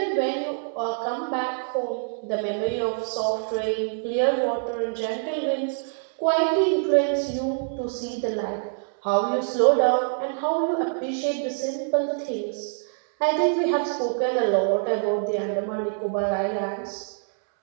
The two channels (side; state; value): left; silent; digital silence